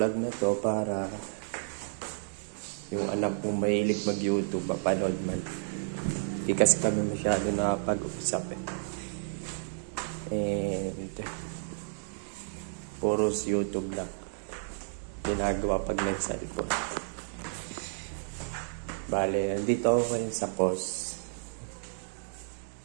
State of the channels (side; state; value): left; silent; digital silence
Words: na to para yung anak kong mahilig mag-YouTube, mapanood man. Hindi kasi kami masyado nakapag-usap And puros YouTube lang ginagawa pag nag-cellphone. Bale, dito ako ngayon sa Cos